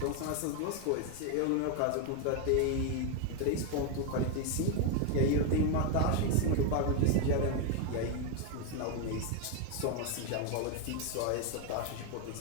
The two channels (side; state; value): both; different; correlation 0.01